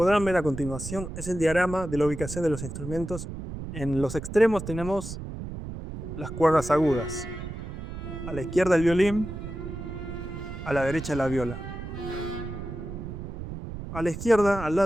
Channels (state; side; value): noise; right; rumble, 8 dB below the sound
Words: ver a continuación es el diagrama de la ubicación de los instrumentos. En los extremos tenemos las cuerdas agudas. A la izquierda el violín, a la derecha la viola. A la izquierda, al